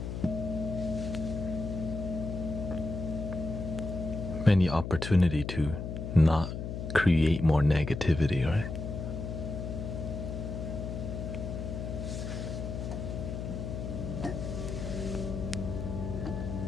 many opportunity to not create more negativity, right?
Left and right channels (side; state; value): left; noise; hum, 5 dB below the sound